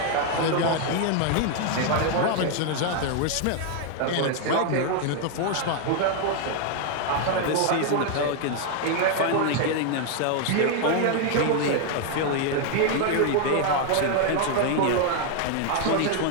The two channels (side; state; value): both; different; correlation 0.00